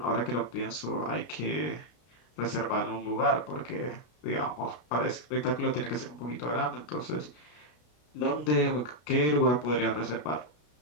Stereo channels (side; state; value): right; late; 33 ms